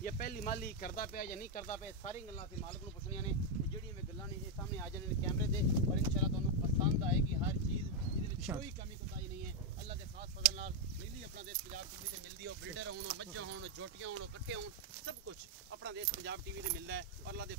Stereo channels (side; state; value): both; normal; correlation 0.01